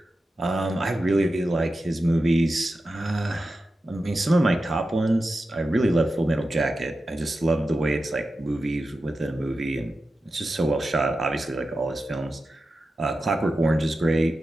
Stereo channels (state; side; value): normal; both; correlation 0.92